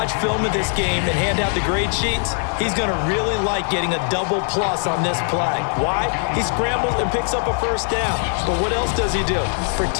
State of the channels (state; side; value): silent; right; 55 dB below the other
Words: film of this game and hand out the grade sheets, he's going to really like getting a double plus on this play. Why? He scrambles and picks up a first down. But what else does he do?